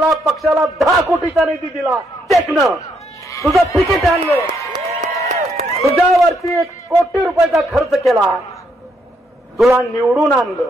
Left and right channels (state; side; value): normal; both; correlation 0.75